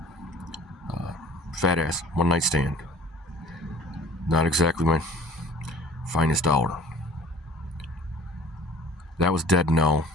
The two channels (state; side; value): normal; both; correlation 0.47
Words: Fat ass, one night stand. Not exactly my finest hour. That was dead no.